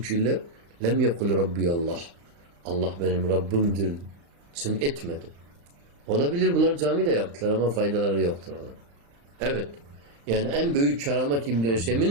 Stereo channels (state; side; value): late; left; 35 ms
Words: lem yekul Rabbi Allah. Allah benim Rabbimdir. Sen etmedi. Olabilir bunlar camide yaptılar ama faydaları yoktur. Evet. Yani en büyük keramet İbn-i